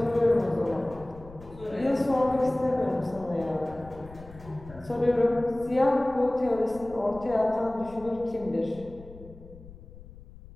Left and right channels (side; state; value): left; noise; rumble, 18 dB below the sound